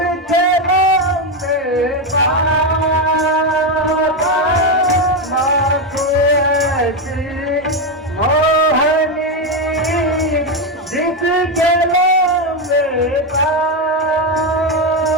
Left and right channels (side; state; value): both; normal; correlation 0.08